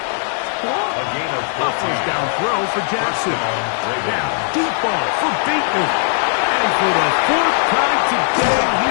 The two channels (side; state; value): right; silent; 58 dB below the other